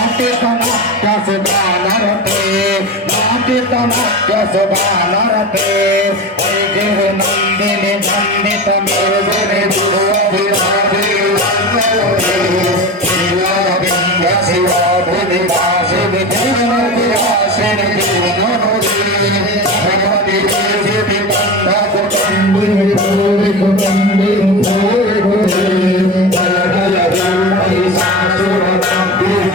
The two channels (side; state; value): both; normal; correlation 0.26